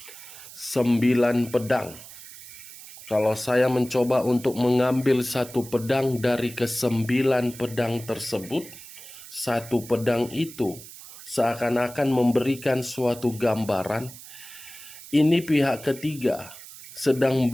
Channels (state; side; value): noise; right; hiss, 16 dB below the sound